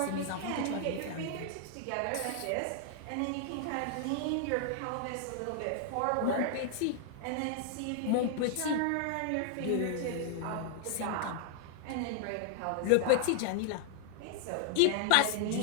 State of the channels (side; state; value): both; different; correlation 0.00